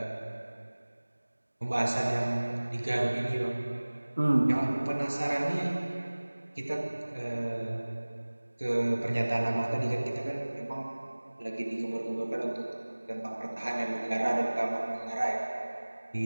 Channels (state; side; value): inverted; both; correlation -1.00